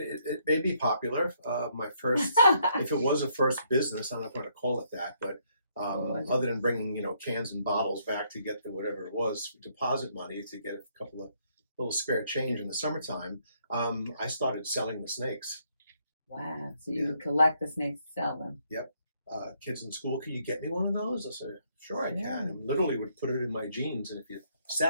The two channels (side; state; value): both; inverted; correlation -0.71